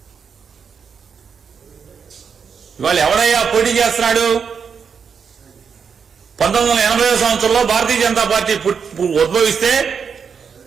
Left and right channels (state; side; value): quieter; left; 6.4 dB